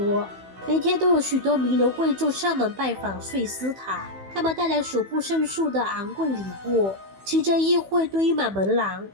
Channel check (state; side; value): late; left; 15 ms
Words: 每天都有許多名流貴胄上門拜訪睡斯塔，他們帶來數不勝數的昂貴禮物，騎着議會堆滿門廊，